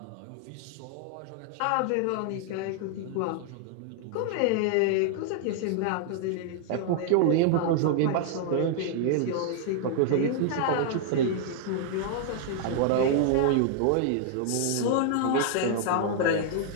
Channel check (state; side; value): different; both; correlation -0.01